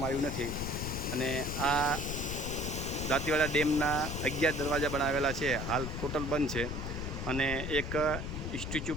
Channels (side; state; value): left; noise; rumble, 5 dB below the sound